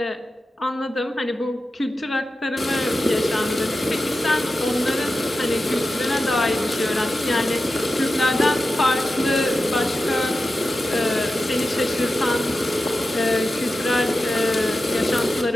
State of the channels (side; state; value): both; normal; correlation 0.92